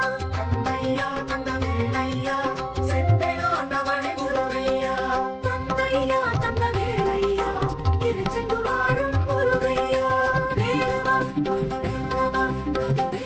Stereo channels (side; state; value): both; identical; correlation 1.00